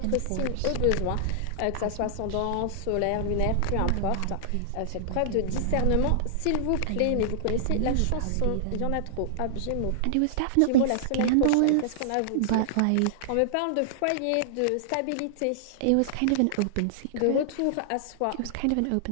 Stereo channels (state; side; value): different; both; correlation -0.01